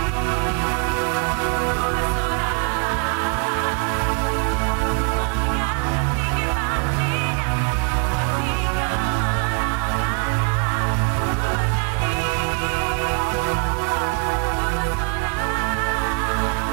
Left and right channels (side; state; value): left; quieter; 36.1 dB